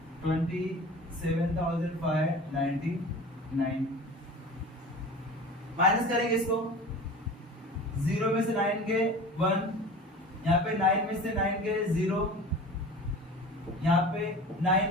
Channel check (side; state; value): both; normal; correlation 0.38